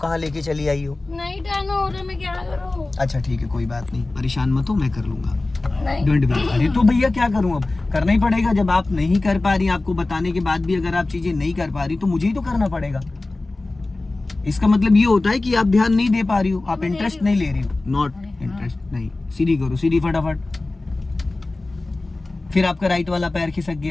लेके चली आई हो। नहीं टर्न हो रहा, मैं क्या करूँ? अच्छा ठीक है, कोई बात नहीं, परेशान मत हो, मैं कर लूंगा। नहीं। Don't worry. अरे तो भैया क्या करूँ, अब करना ही पड़ेगा। जब आप नहीं कर पा रही, आपको बताने के बाद भी अगर आप चीजें नहीं कर पा रही तो मुझे ही तो करना पड़ेगा। इसका मतलब ये होता है कि आप ध्यान नहीं दे पा रही हो, आप इंटरेस्ट नहीं ले रही हो। नॉट इंटरेस्ट, नहीं, सीधी करो, सीधी फटाफट। फिर आपका राइट वाला पैर खिसक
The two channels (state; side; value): quieter; right; 3.1 dB